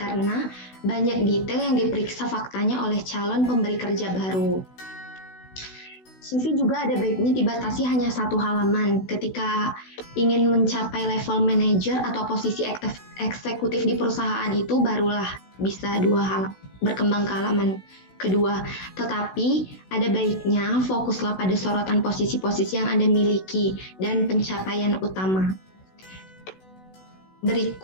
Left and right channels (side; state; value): right; late; 16 ms